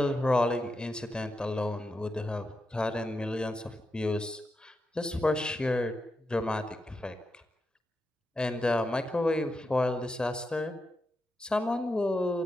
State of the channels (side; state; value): both; normal; correlation 0.87